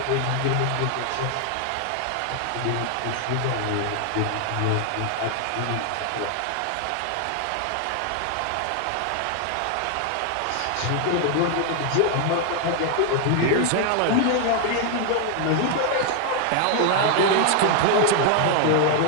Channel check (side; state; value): both; different; correlation 0.00